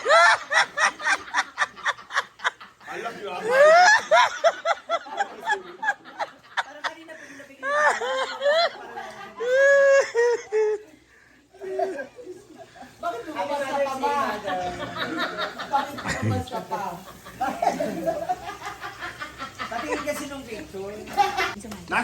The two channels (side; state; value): both; identical; correlation 1.00